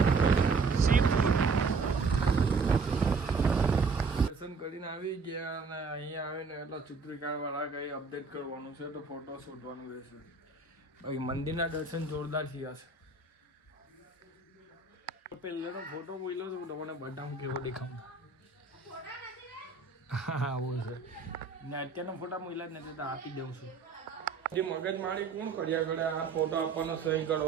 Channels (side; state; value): left; quieter; 4.5 dB